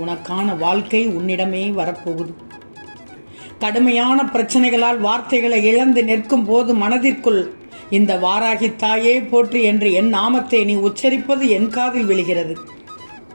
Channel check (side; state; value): both; inverted; correlation -1.00